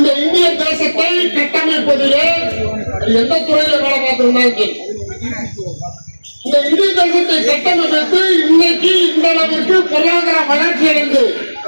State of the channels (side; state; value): both; inverted; correlation -1.00